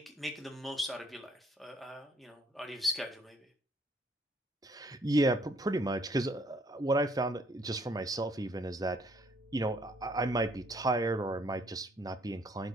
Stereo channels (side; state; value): both; normal; correlation 0.65